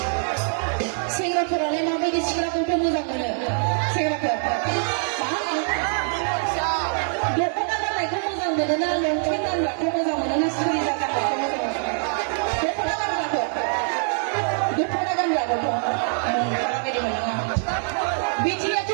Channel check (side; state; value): left; silent; 63 dB below the other